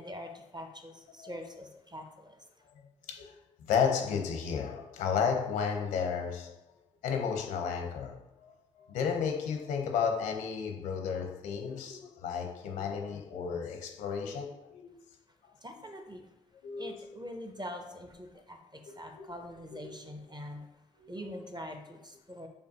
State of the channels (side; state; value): right; quieter; 5.9 dB